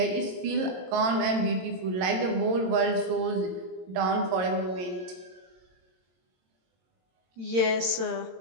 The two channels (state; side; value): late; left; 22 ms